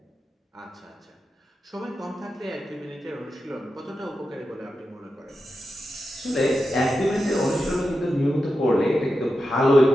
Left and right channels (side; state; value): both; normal; correlation 0.90